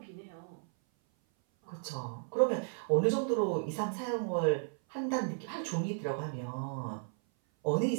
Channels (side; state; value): left; silent; 55 dB below the other